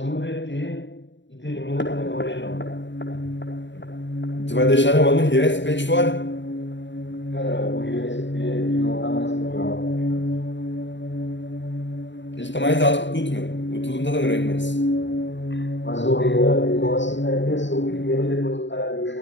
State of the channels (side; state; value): right; late; 0.53 ms